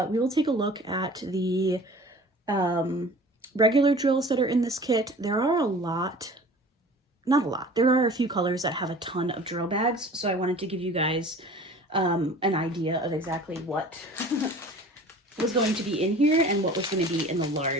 we will take a look at the regular drills that are in this kit. There are a lot, not a lot, there are a few colors that have a ton of drill bags, so I wanted to give you guys an idea of exactly what was going to be in here and what was going to be in the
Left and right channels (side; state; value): both; normal; correlation 0.44